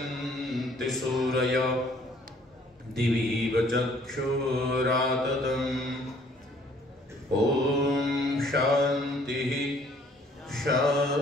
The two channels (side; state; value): both; normal; correlation 0.60